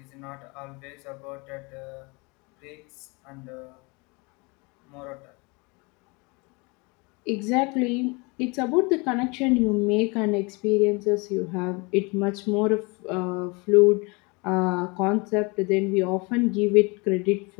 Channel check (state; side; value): quieter; right; 28.4 dB